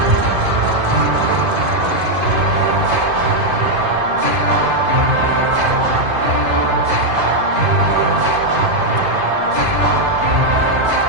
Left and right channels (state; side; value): late; left; 2.5 ms